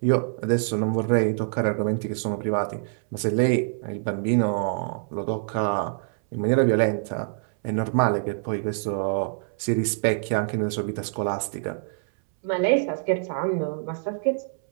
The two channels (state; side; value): silent; left; 61 dB below the other